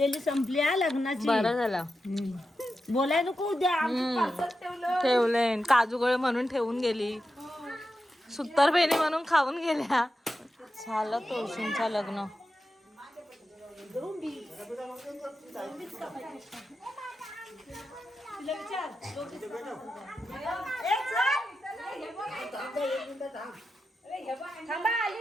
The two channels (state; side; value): normal; both; correlation 0.90